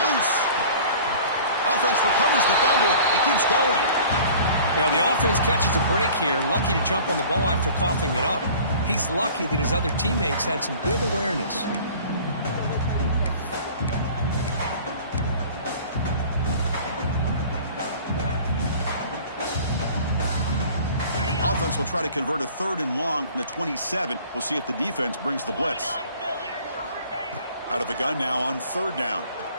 loose. Offense recovers the fumble. He keeps going. Well, the offense catches a break here. Lucky to jump on the ball after coughing it up. He's lucky that his other teammates had some good awareness. Offense will try to convert a 3rd and long from the 27. We'll see if the defense brings the blitz. Out of the gun now on 3rd down.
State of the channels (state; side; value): inverted; both; correlation -0.47